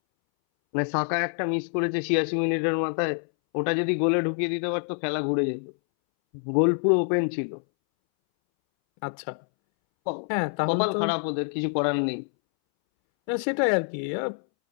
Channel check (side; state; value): right; silent; 61 dB below the other